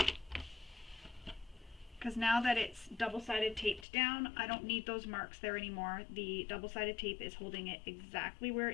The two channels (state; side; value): drops out; right; at 3.9 s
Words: Because now that it's double-sided taped down, I don't need those marks there anymore. The double-sided tape is holding it exactly where